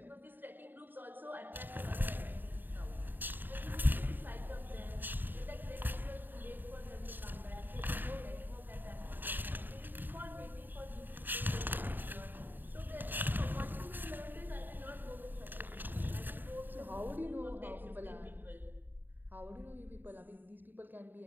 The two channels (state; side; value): late; left; 0.091 ms